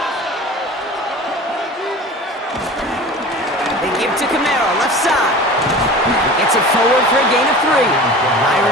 Give to Camaro, left side. Gets it forward for a gain of 3.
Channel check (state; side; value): normal; both; correlation 0.37